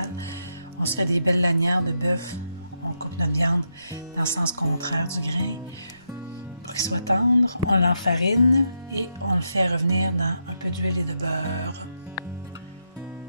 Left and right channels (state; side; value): inverted; both; correlation -0.82